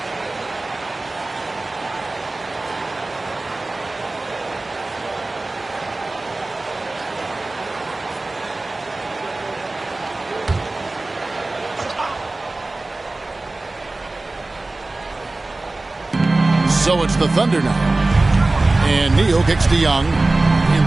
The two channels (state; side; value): quieter; left; 3.0 dB